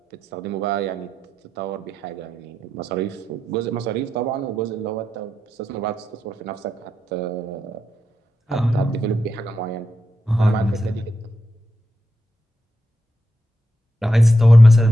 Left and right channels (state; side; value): normal; both; correlation 0.86